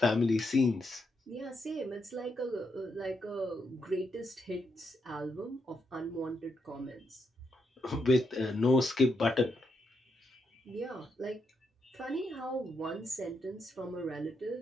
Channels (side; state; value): both; normal; correlation 0.80